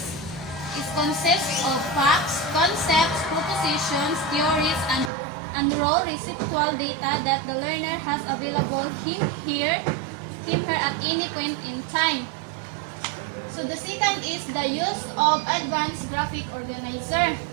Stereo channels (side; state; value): left; drops out; at 5.1 s